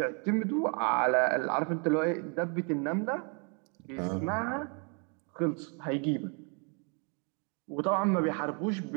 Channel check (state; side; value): quieter; left; 37.1 dB